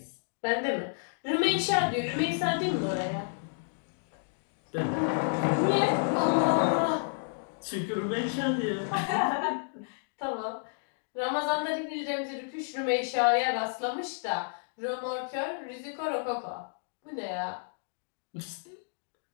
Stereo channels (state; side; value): silent; right; digital silence